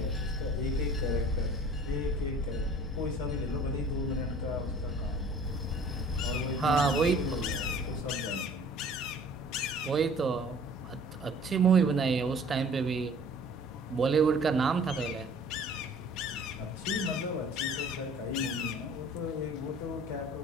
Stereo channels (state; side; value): normal; both; correlation 0.49